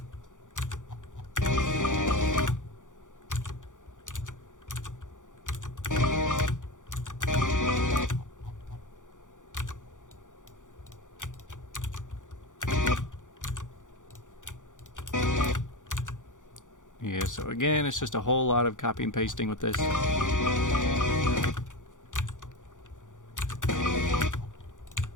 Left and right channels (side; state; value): right; late; 0.87 ms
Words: Yeah, so again, it's just a whole lot of copy and pasting with this.